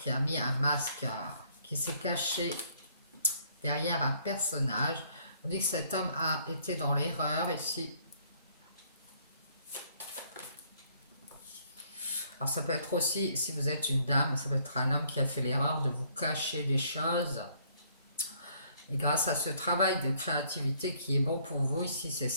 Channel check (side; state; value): both; inverted; correlation -0.65